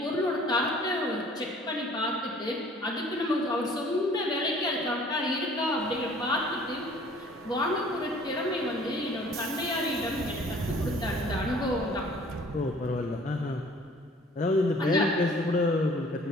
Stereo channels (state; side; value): normal; both; correlation 0.53